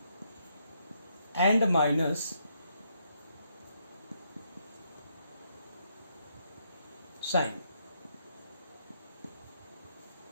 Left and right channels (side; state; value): both; inverted; correlation -0.76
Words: and minus sign.